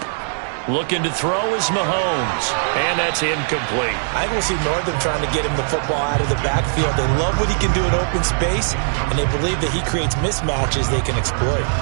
Looking to throw is Mahomes. And that's incomplete. I think we'll see Northern trying to get him the football out of the backfield. They love what he can do in open space, and they believe that he creates mismatches they can exploit.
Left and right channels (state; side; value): silent; left; 66 dB below the other